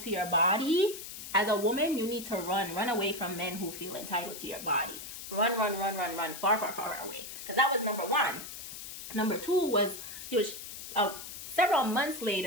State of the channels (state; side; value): noise; left; hiss, 10 dB below the sound